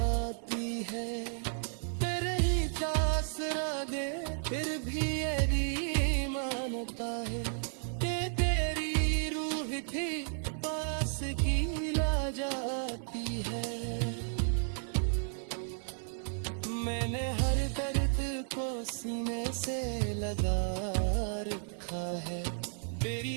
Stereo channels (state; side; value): silent; left; digital silence